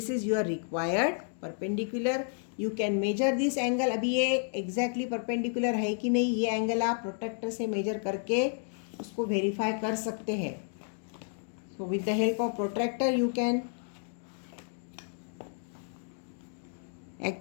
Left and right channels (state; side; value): silent; right; 57 dB below the other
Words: is your required perpendicular. You can measure this angle. अभी ये एग्जैक्टली परपेंडिकुलर है कि नहीं, ये एंगल आप प्रोट्रैक्टर से major करके उसको वेरीफाई कर सकते हैं. So with the help of protractor you can